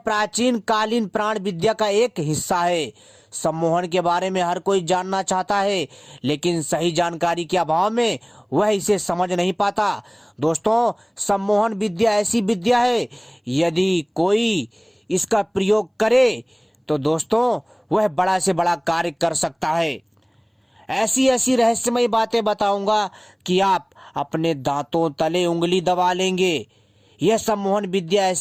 कालीन प्राण विद्या का एक हिस्सा है। सम्मोहन के बारे में हर कोई जानना चाहता है, लेकिन सही जानकारी के अभाव में वह इसे समझ नहीं पाता। दोस्तों, सम्मोहन विद्या ऐसी विद्या है, यदि कोई इसका प्रयोग करे तो दोस्तों वह बड़ा से बड़ा कार्य कर सकता है। ऐसी ऐसी रहस्यमयी बातें बताऊंगा कि आप अपने दांतों तले उंगली दबा लेंगे। यह सम्मोहन विद्या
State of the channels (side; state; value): both; identical; correlation 1.00